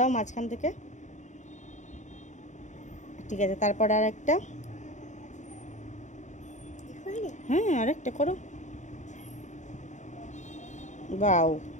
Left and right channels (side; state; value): right; late; 0.35 ms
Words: মাঝখান থেকে। ঠিক আছে, তারপর আর একটা। হ্যাঁ, আরেকটা করো। বাও,